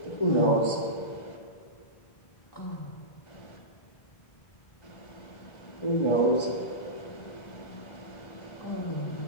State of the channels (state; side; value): late; right; 1.3 ms